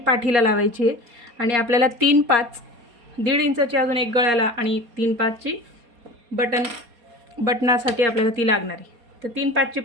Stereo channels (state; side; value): late; left; 4.3 ms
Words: लावायची आहे आणि आपल्याला 3-5 1.5 इंचाची अजून एक गळ्याला आणि 3-5ची बटनासाठी आपल्याला ती लागणार आहे. तर 3-5ची